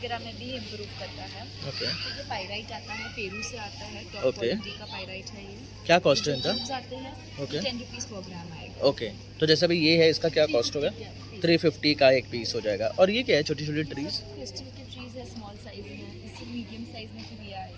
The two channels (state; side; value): identical; both; correlation 1.00